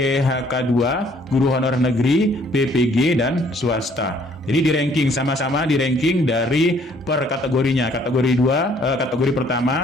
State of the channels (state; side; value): normal; both; correlation 0.61